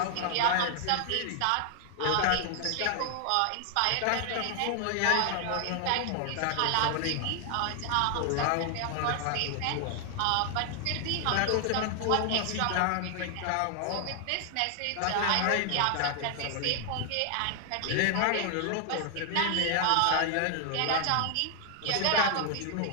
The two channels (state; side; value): different; both; correlation 0.00